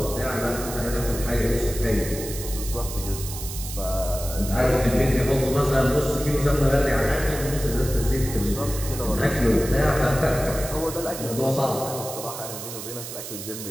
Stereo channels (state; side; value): noise; right; hiss, 9 dB below the sound